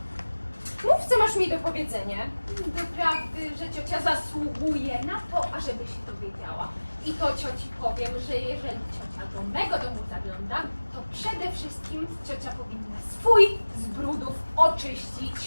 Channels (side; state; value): both; inverted; correlation -1.00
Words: Mów, co masz mi do powiedzenia. Doprawdy, że ciocia zasługuje na to, ażeby się dowiedziała. I to cioci powiem, że jeżeli ciocia do mego domu zagląda, to przede wszystkim ciocia powinna swój z brudów